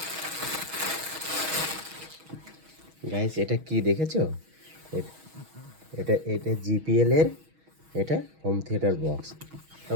গাইস এটা কি দেখেছো? এটা এটা জিপিএল এর, এটা হোম থিয়েটার বক্স।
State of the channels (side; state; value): left; late; 6.3 ms